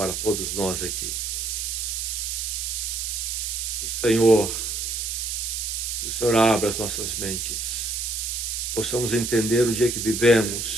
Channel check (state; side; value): noise; right; hiss, 2 dB below the sound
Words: todos nós aqui. Que o Senhor abra as nossas mentes. Possamos entender o dia que